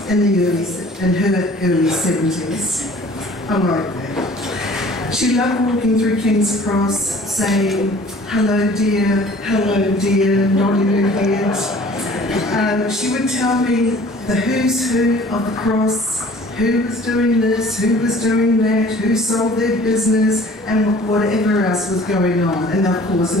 her early 70s. I like that. She loved walking through King's Cross, saying, hello dear, nodding her head. She would tell me the who's who of the cross, who was doing this, who was doing that, who sold their business, and whatever else was going on. And of course,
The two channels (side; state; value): both; normal; correlation 0.50